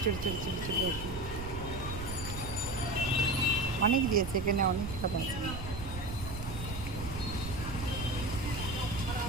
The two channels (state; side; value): noise; right; rumble, 8 dB below the sound